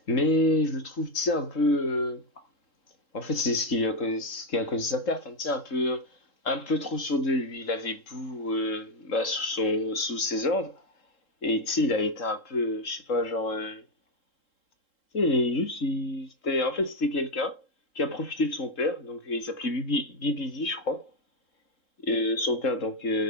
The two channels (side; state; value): right; late; 3.7 ms